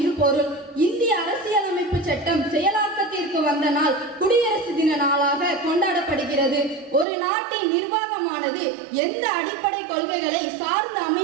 பொருள். இந்திய அரசியலமைப்பு சட்டம் செயலாக்கத்திற்கு வந்த நாள் குடியரசு தின நாளாக கொண்டாடப்படுகிறது. ஒரு நாட்டின் நிர்வாகமானது எந்த அடிப்படை கொள்கைகளை சார்ந்து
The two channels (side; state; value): left; drops out; at 7.1 s